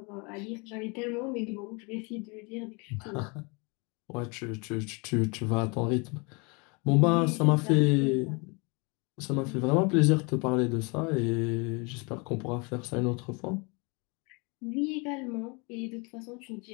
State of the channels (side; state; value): right; quieter; 30.7 dB